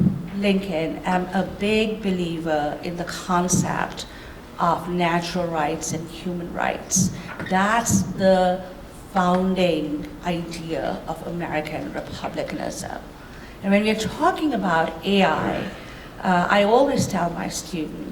Lincoln, am a big believer in the concept of natural rights and human rights. That's the founding idea of American republicanism. And when we're talking about AI, I always tell my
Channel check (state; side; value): identical; both; correlation 1.00